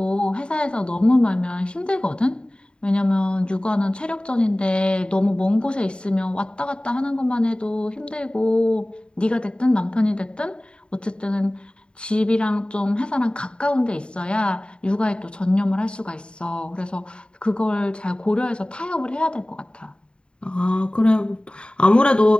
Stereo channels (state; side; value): late; right; 0.052 ms